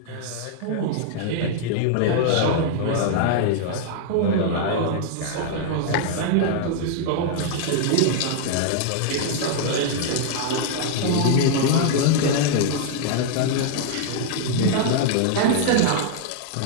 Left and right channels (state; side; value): different; both; correlation -0.01